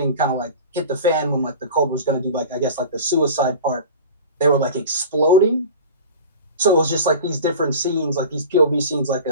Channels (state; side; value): inverted; both; correlation -0.36